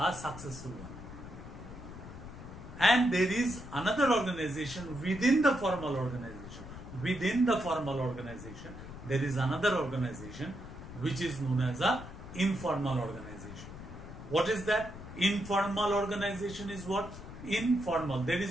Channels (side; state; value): left; noise; rumble, 12 dB below the sound